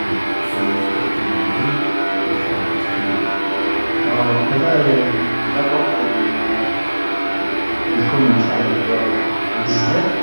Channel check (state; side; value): inverted; both; correlation -1.00